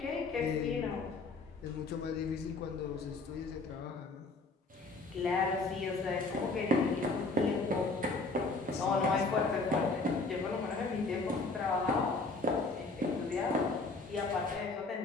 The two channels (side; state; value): right; quieter; 3.6 dB